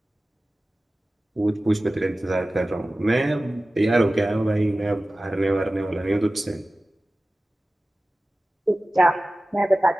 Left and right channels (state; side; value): normal; both; correlation 0.96